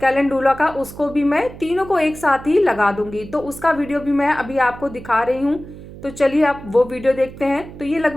कैलेंडुला का, उसको भी मैं तीनों को एक साथ ही लगा दूंगी। तो उसका वीडियो भी मैं अभी आपको दिखा रही हूँ। तो चलिए आप वो वीडियो देखते हैं। तो ये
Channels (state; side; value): noise; right; hum, 15 dB below the sound